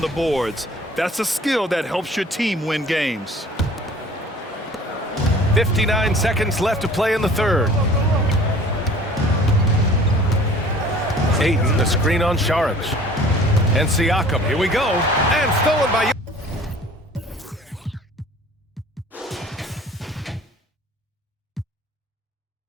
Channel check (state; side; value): normal; both; correlation 0.49